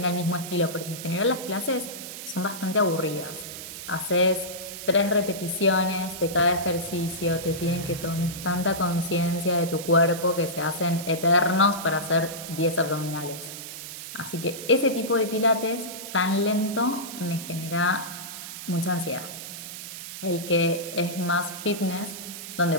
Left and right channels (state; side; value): noise; right; hiss, 10 dB below the sound